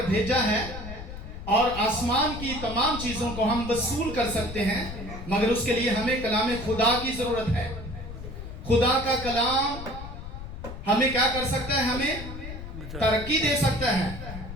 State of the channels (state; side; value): noise; left; rumble, 10 dB below the sound